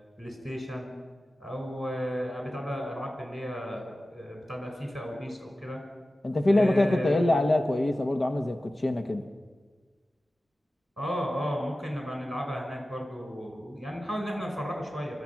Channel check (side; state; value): both; normal; correlation 0.95